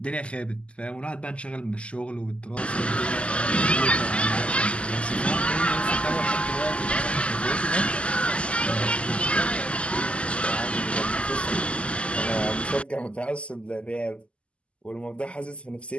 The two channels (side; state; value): right; late; 0.056 ms